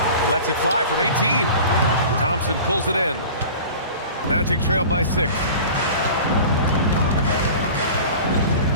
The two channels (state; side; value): inverted; both; correlation -0.39